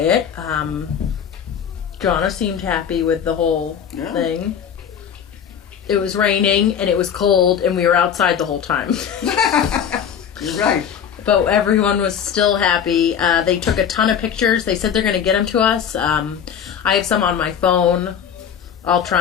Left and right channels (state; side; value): quieter; right; 8.2 dB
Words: Jonna seemed happy with the whole thing. It was raining, and it was cold, and we were outside the whole time. You're right. But everyone was still happy. They took a ton of pictures. They said they're going to get them to us. I have some on my phone. I'll